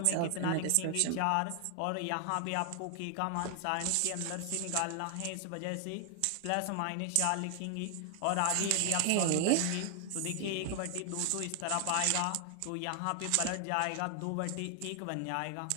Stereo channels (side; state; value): both; different; correlation 0.00